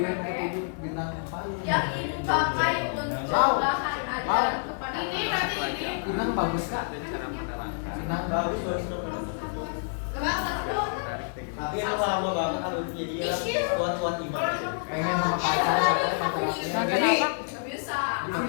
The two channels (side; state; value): right; silent; digital silence